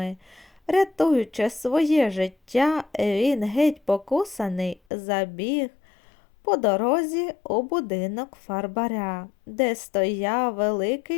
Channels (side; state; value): right; drops out; at 4.8 s